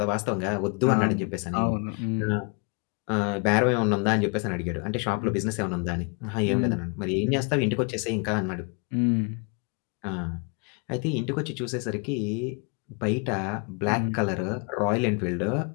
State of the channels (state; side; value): quieter; right; 34.5 dB